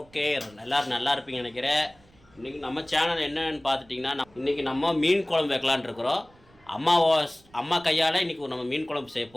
எல்லோரும் நல்லா இருப்பீங்கன்னு நினைக்கிறேன். இன்றைக்கி நம்ம சேனல் என்னென்னு பார்த்துட்டிங்கன்னா, இன்றைக்கி நம்ம மீன் குழம்பு வைக்கலான்னு இருக்கிறோம். அம்மா கையால் இன்றைக்கி நம்ம மீன் குழம்பு செய்ய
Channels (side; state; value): right; noise; rumble, 29 dB below the sound